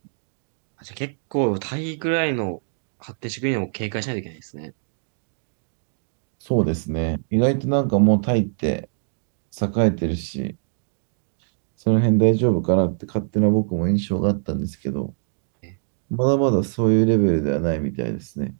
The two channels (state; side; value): silent; left; 63 dB below the other